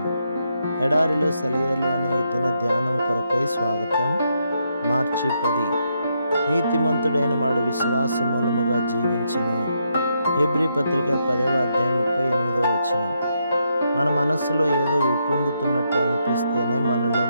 ఎడారిలో సెలయేర్లు అనే ఈ దిన ధ్యానం కొరకై స్వాగతం. మార్చి 10. నీతిమంతుడైన వాడు విశ్వాస మూలముగా జీవించును. హెబ్రీ పత్రిక 10వ అధ్యాయం 38వ వచనం. మన మనస్సులో ఏదో ఉప్పొంగుతున్నట్టు అనిపిస్తేనే మనలో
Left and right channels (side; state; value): both; inverted; correlation -0.79